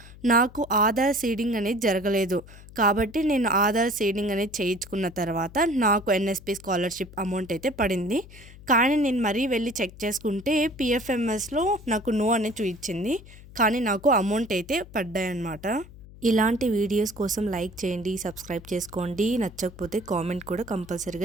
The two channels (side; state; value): left; noise; hum, 19 dB below the sound